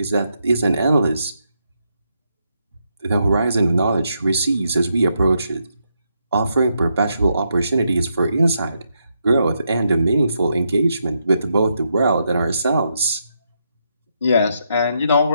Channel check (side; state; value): both; inverted; correlation -0.80